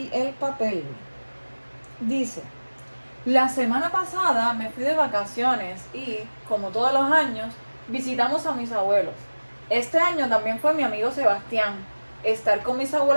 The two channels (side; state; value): both; inverted; correlation -1.00